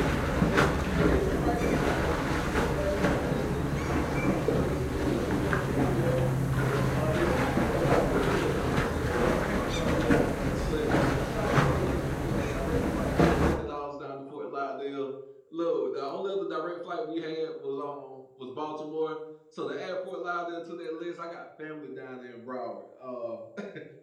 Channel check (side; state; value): both; identical; correlation 1.00